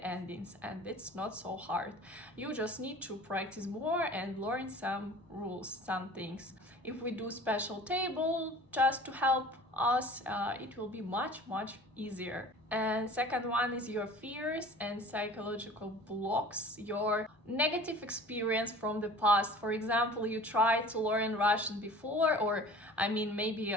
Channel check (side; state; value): both; normal; correlation 0.43